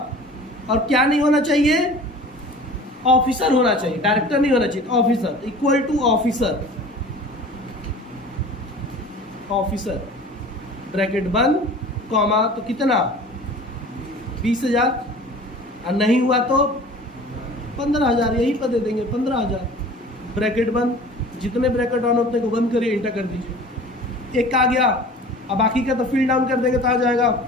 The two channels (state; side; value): normal; both; correlation 0.43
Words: और क्या नहीं होना चाहिए, ऑफिसर होना चाहिए, डायरेक्टर नहीं होना चाहिए, officer equal to officer bracket बंद कॉमा, तो कितना, 20,000 और नहीं हुआ तो 15,000 यहीं पर दे देंगे 15,000। ब्रैकेट बंद, जितने ब्रैकेट ऑन होते को बंद करिए, इंटर कर दीजिए। एक आ गया, अब बाकी का तो फिल डाउन कर देंगे तो आ जाएगा।